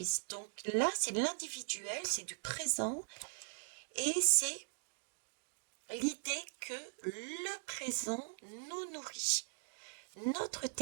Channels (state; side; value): silent; left; digital silence